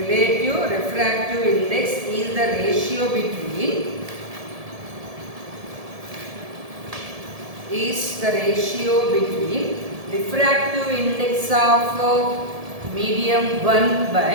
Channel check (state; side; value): late; left; 1.7 ms